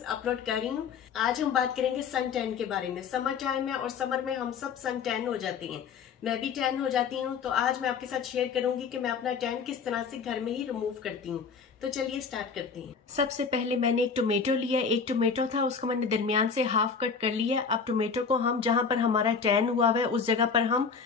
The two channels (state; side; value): quieter; right; 5.8 dB